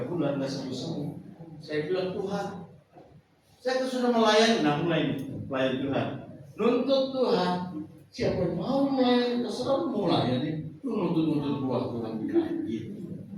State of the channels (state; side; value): identical; both; correlation 1.00